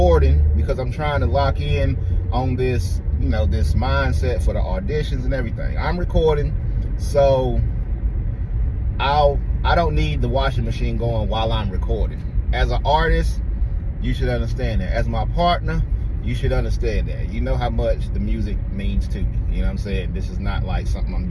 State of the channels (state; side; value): identical; both; correlation 1.00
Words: because I'm trying to lock in on this, you know, this mindset for the auditions and everything. I'm recording, so I don't need the washing machine going while I'm recording. As an artist, you should understand that. As my partner, you should understand that. You know how much the music means to me. You know what I'm saying? This is not like something I'm